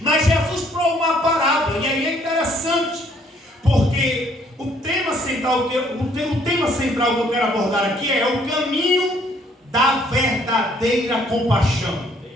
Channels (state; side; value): normal; both; correlation 0.64